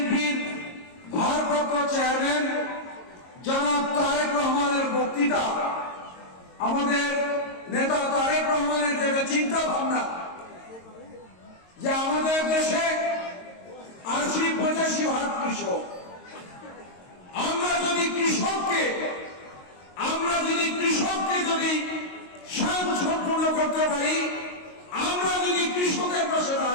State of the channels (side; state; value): right; late; 22 ms